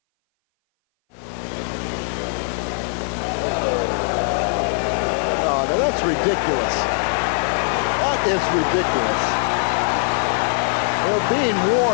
Oh, now that's ridiculous. That is ridiculous. They're being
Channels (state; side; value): silent; right; 58 dB below the other